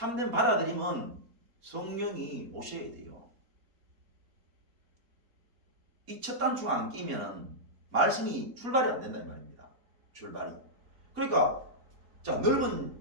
받아들임은 성령이 오셔야 돼요. 이 첫 단추가 안 끼면은 말씀이 출발이 안 된다 이 말입니다. 출발이. 그러니까 자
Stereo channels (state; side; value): late; left; 4.2 ms